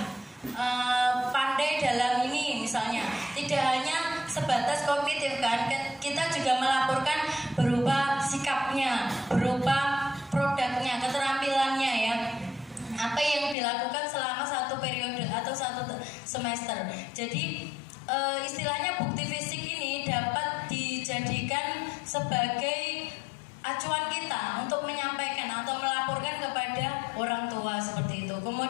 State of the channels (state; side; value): drops out; right; at 13.6 s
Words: pandai dalam ini misalnya, tidak hanya sebatas kognitif kan, kita juga melaporkan berupa sikapnya, berupa produknya, keterampilannya ya, apa yang dilakukan selama satu periode atau satu semester. Jadi istilahnya bukti fisik ini dapat dijadikan sebagai acuan kita untuk menyampaikan atau melaporkan kepada orang tua seperti itu.